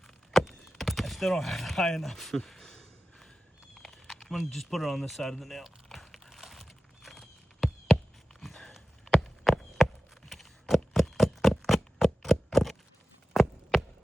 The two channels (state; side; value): normal; both; correlation 0.93